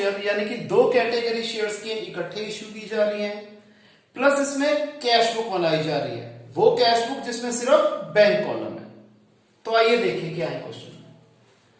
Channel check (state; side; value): identical; both; correlation 1.00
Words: यानी कि 2 कैटेगरी शेयर्स की इकट्ठे इश्यू की जा रही हैं, प्लस इसमें कैश बुक बनाई जा रही है, वो कैश बुक जिसमें सिर्फ बैंक कॉलम है। तो आइए देखिए क्या है क्वेश्चन में।